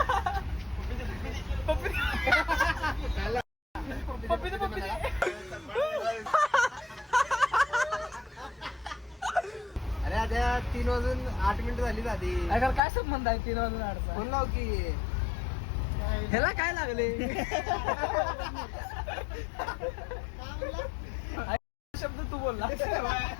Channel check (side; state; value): right; drops out; at 12.8 s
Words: अरे आता 3 वाजून 8 मिनिटं झाली आधी अगर काय संबंध आहे 3 वाजून 8 फोन लाव की ह्याला काय लागले शब्द तू बोलला